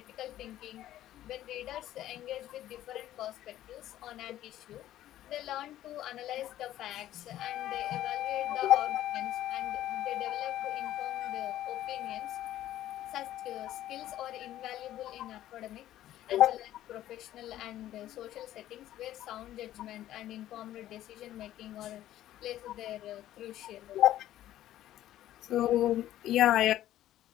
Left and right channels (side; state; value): right; quieter; 13.3 dB